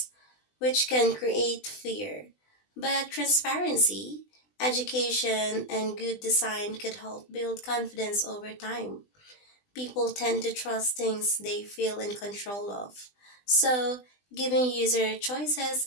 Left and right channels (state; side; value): late; right; 20 ms